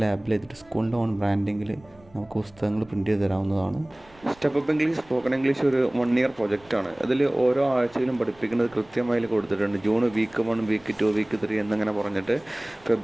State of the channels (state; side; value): noise; right; rumble, 28 dB below the sound